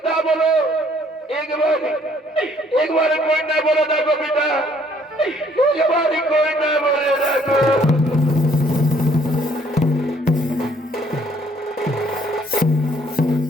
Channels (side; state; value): both; normal; correlation 0.63